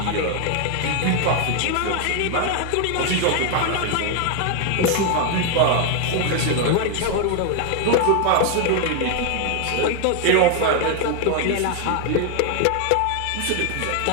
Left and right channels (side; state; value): both; different; correlation 0.00